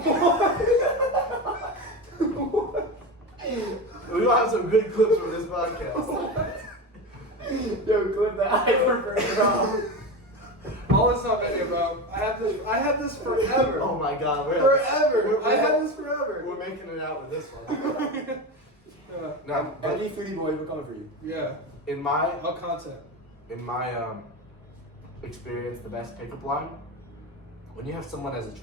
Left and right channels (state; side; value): normal; both; correlation 0.22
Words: We will have some good clips from this podcast. Yo, clip that. I prefer it raw. All this on video, bro. I have this forever. Oh my God, Forever. I have this forever. We're making it out with this one. No, but Any foodie boy, we're coming for you. Yeah. in my All content. experience, the best pickup line, when you have someone as